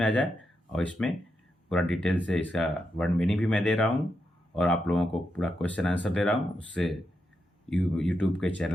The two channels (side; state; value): both; normal; correlation 0.85